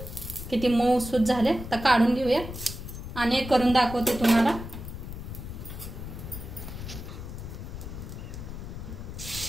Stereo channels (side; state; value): left; noise; rumble, 9 dB below the sound